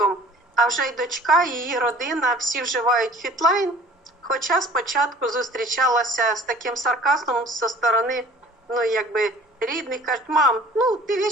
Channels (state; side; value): normal; both; correlation 0.49